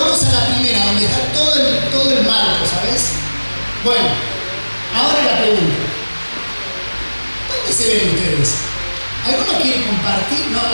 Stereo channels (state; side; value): inverted; both; correlation -1.00